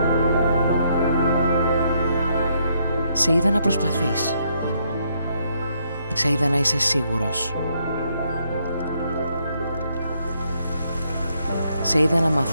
Σε είδα να προσπαθείς. Σε είδα να είσαι σίγουρος. Σε είδα να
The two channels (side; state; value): both; inverted; correlation -0.74